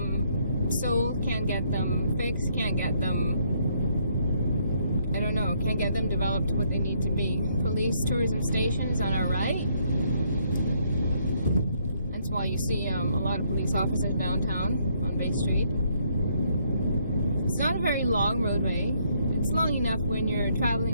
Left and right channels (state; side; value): inverted; both; correlation -0.70